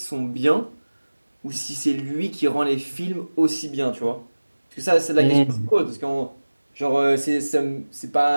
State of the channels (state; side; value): inverted; both; correlation -1.00